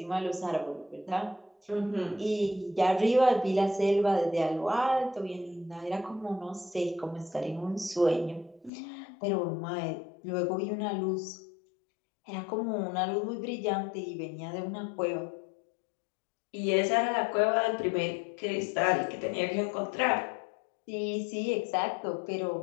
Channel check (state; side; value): drops out; right; at 8.7 s